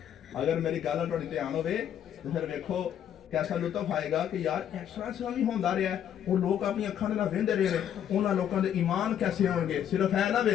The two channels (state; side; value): quieter; right; 9.8 dB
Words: अगर मेरी गल तुहाडी ध्यान होवे तो फिर वेखो कैसा लुत्फ आएगा कि यार इस तरह भी होंदा रहा है, वो लोग अपनी अखां दे नाल वेंदे रहे ने, उन्हां लोकां दे ईमान कैसे होणगे। सिर्फ है ना